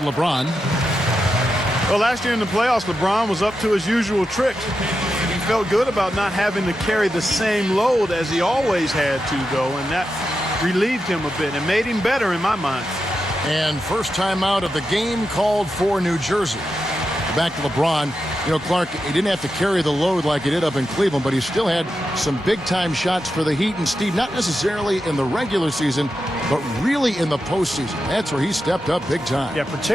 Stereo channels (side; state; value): both; normal; correlation 0.88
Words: Well, last year in the playoffs, LeBron was up to his usual tricks. He felt good about not having to carry the same load as he always had to, though, and that relieved him a bit and made him better in my mind. And first time out of the game called for New Jersey. Back to LeBron. You know, Clark, he didn't have to carry the load like he did up in Cleveland, but he still had some big-time shots for the Heat. And Steve, not necessarily in the regular season, but really in the postseason. That's where he stepped up big time. Yeah,